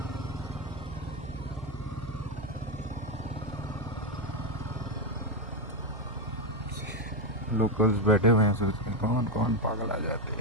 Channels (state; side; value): noise; right; hum, 13 dB below the sound